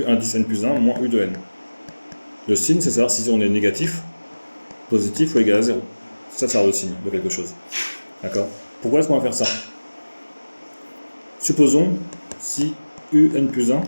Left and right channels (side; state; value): both; inverted; correlation -1.00